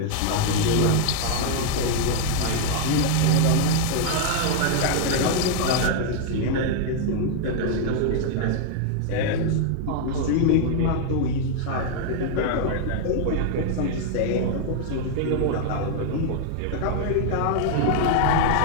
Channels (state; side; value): different; both; correlation 0.00